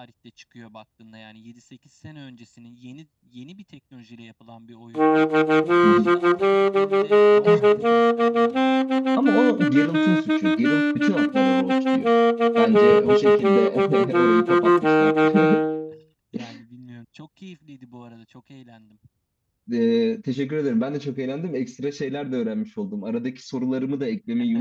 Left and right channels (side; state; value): both; identical; correlation 1.00